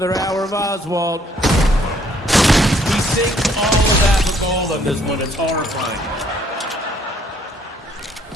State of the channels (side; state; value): both; normal; correlation 0.65